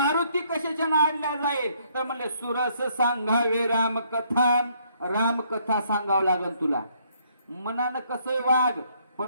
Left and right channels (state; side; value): inverted; both; correlation -0.68